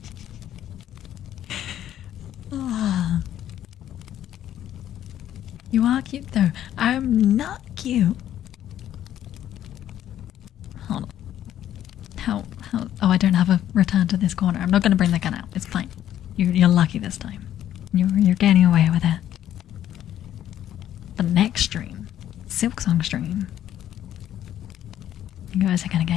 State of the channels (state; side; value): quieter; right; 11.4 dB